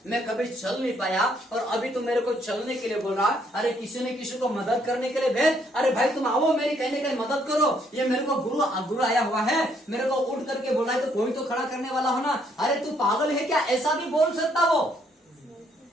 मैं कभी चल नहीं पाया, और अभी तो मेरे को चलने के लिए बोल रहा। अरे किसी ने किसी को मदद करने के लिए भेज, अरे भाई तुम आओ मेरी कहने के लिए मदद करो, ये मेरे को गुरु आया हुआ है, मेरे को उठ करके बोला है, तो कोई तो खड़ा करने वाला हो ना। अरे तू पागल है क्या? ऐसा भी बोल सकता वो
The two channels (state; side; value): normal; both; correlation 0.69